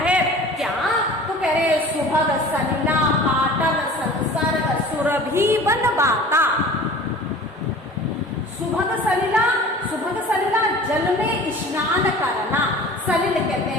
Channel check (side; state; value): both; normal; correlation 0.42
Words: है क्या, तो कह रहे सुभग सलिला पाटल संसर्ग सुरभि बन बाता। सुभग सलिला, सुभग सलिला जल में स्नान करना, सलिल कहते